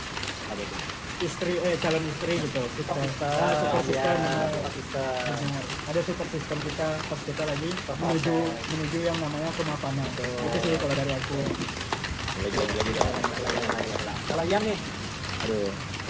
istri, calon istri gitu, kita super system, benar. Ada super system kita pas kita lagi menuju yang namanya kemapanan. Itu sih kalau dari aku. Lagi. Kalau Ian nih, Aduh,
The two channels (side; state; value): both; identical; correlation 1.00